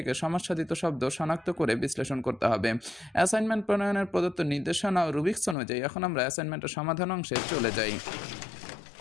সমাস সাধিত শব্দ শনাক্ত করে বিশ্লেষণ করতে হবে। অ্যাসাইনমেন্ট প্রণয়নের প্রদত্ত নির্দেশনা ও রুবিক্স অনুযায়ী এখন আমরা অ্যাসাইনমেন্টের সমাধান অংশে চলে যাই।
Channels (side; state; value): right; drops out; at 5.6 s